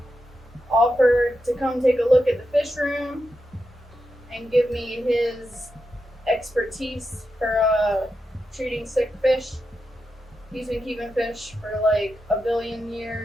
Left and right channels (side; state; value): both; normal; correlation 0.87